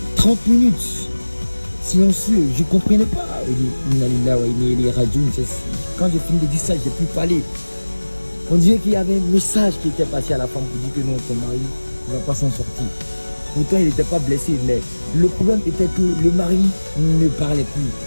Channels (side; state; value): both; inverted; correlation -1.00